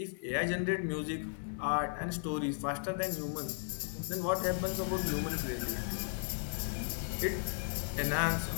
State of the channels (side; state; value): right; silent; digital silence